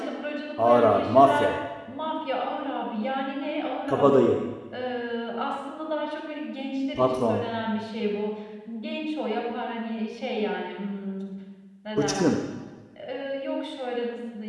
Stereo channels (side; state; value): both; identical; correlation 1.00